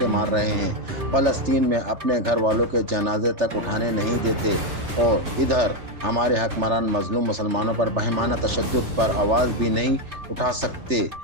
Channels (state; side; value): late; left; 3.3 ms